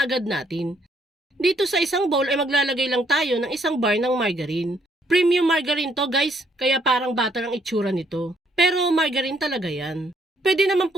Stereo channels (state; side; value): normal; both; correlation 0.69